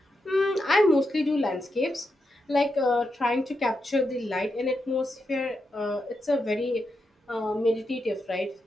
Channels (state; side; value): normal; both; correlation 0.85